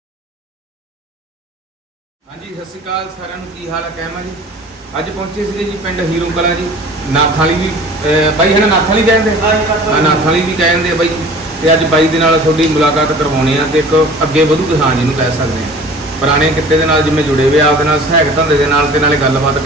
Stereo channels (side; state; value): both; normal; correlation 0.45